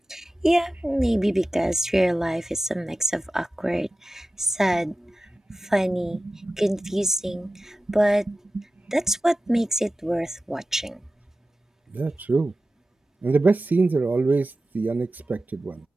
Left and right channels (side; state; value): both; normal; correlation 0.94